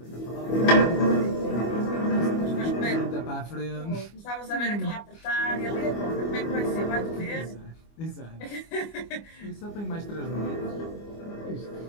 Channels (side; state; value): right; late; 25 ms